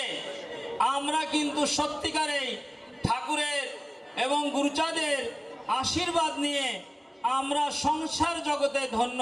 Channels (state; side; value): identical; both; correlation 1.00